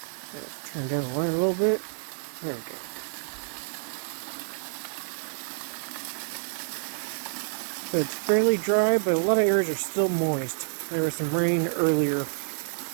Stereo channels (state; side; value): silent; left; digital silence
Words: Turn down the light a little bit. There we go. So it's fairly dry, but a lot of areas are still moist. There was some rain earlier,